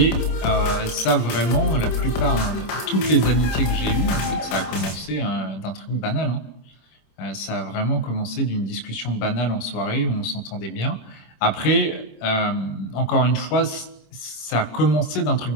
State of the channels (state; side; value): late; right; 26 ms